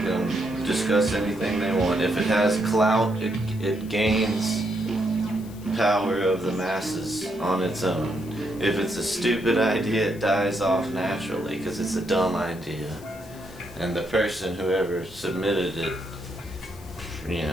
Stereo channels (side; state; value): left; noise; hiss, 22 dB below the sound